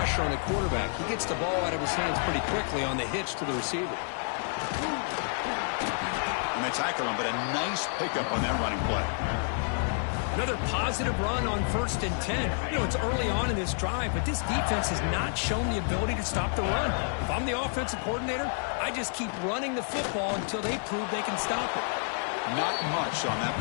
on the quarterback. He gets the ball out of his hands pretty quickly on the hitch to the receiver. And they tackle him, but a nice pickup on that running play. Another positive run on 1st and 10. You know, it's early on in this drive, but this defense has not shown the ability to stop the run. If I'm the offensive coordinator, I just keep running the football until they prove they can stop it. Not much on that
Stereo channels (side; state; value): right; silent; 58 dB below the other